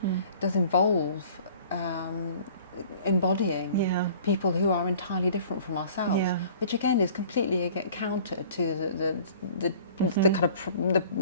does involve embodying people who are entirely different from ourselves, which again is completely counter to the kind of the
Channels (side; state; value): both; inverted; correlation -0.49